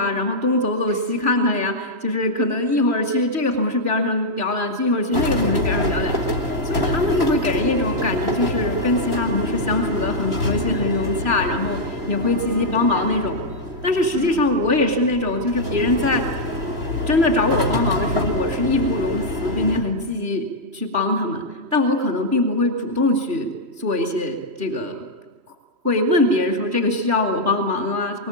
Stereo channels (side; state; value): left; late; 3.1 ms